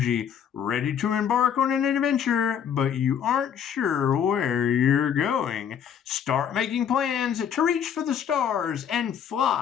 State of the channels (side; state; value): right; quieter; 8.3 dB